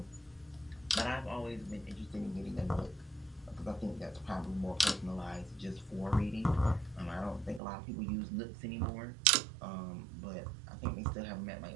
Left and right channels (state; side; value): drops out; left; at 7.6 s